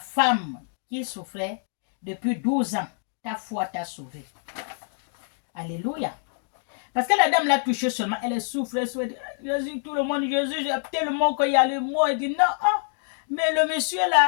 qui souffrait depuis 12 ans, ta foi t'a sauvé. Alléluia. Parce que la dame l'a touché seulement, elle souffre, elle souffre. Jésus, tout le monde, Jésus, tellement qu'il y a le mot, il dit non, ah, mais le monsieur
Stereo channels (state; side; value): silent; right; 61 dB below the other